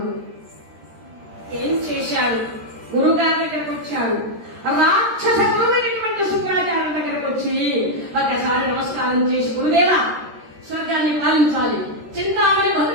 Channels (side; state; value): left; late; 13 ms